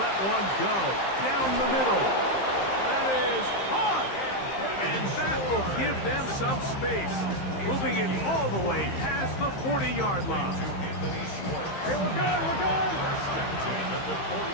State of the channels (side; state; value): right; late; 15 ms